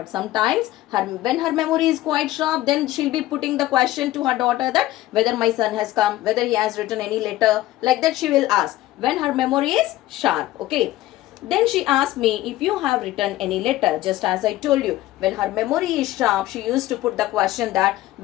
sometimes when her memory is quite sharp, then she'll be putting the question to her daughter that whether my son has come, whether he has written any letter. Like that she will ask when her memory is sharp. Okay. Then she asked me if you have written any letter. Just as I told you, when her memory is sharp, she used to put the question that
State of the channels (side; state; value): right; quieter; 15.8 dB